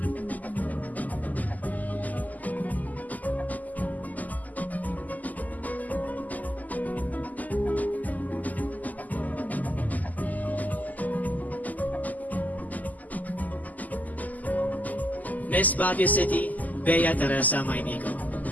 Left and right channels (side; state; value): right; late; 0.080 ms